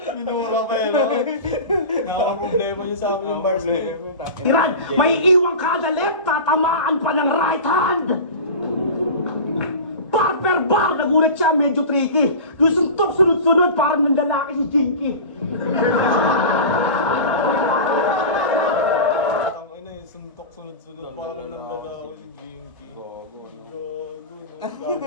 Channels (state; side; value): inverted; both; correlation -0.31